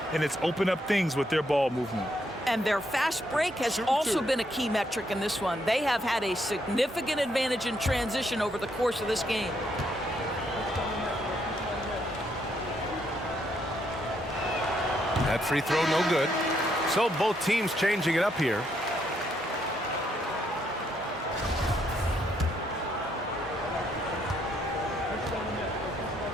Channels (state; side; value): normal; both; correlation 0.74